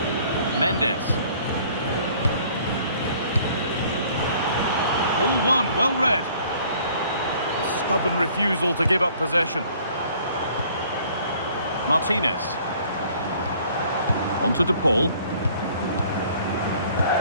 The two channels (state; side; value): inverted; both; correlation -0.56